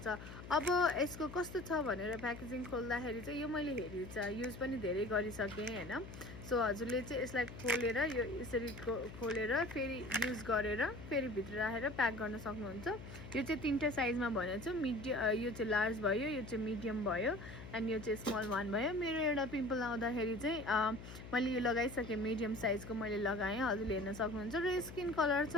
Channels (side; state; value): left; noise; hum, 13 dB below the sound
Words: अब यसको कस्तो छ भनेर प्याकेजिङ खोल्दाखेरि चाहिँ यो मैले हेरी छ युज पनि धेरै गरिसकेँ हैन. सो हजुरले चाहिँ यसलाई खोलेर यो यसरी खोलेर फेरि युज गरेर फेरि भित्र राखेर प्याक गर्न सक्नुहुन्छ. यो चाहिँ तीनटा साइजमा भनेको छु. यो चाहिँ लार्ज भयो, यो चाहिँ मिडियम भयो एन्ड यो चाहिँ स्मल वान भयो. मेरो एउटा पिम्पल आउँदाखेरि चाहिँ मैले यो लगाइसकेँ, मिडियम साइजको मैले लगाएँ, हजुरले हेर्न सक्नुहुन्छ. र स्किन कलर